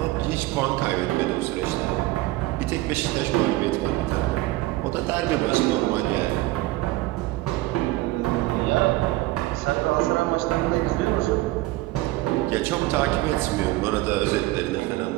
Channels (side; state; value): left; quieter; 18.5 dB